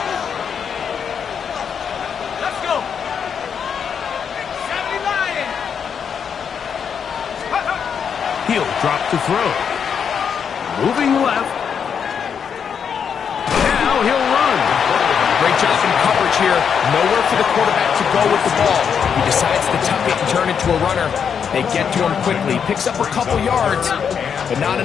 Let's go. 70 Lion. He'll drop to throw. Moving left. Now he'll run. Great job in coverage here. Nowhere for the quarterback to go with the ball. He decides to tuck it and turn into a runner. They get to him quickly. Picks up a couple yards, but not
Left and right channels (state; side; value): quieter; right; 7.2 dB